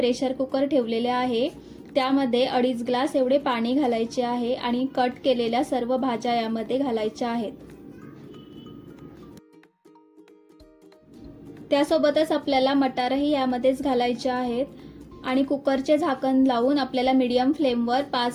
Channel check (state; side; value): identical; both; correlation 1.00